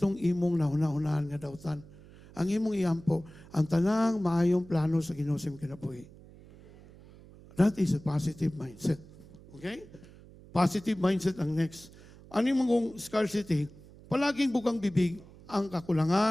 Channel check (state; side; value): noise; right; hum, 21 dB below the sound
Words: imong nahuna-hunahan nga dawtan. Ang imong iampo, ang tanang maayong plano sa Ginoo sa kinabuhi. That is a positive mindset. Okay? Positive mindset ang next. Ano yung mong scarcity? Palaging bukang bibig ang